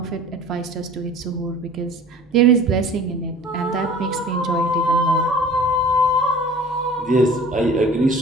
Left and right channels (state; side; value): normal; both; correlation 0.44